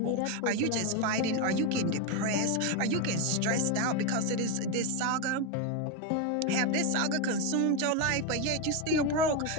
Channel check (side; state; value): both; different; correlation 0.03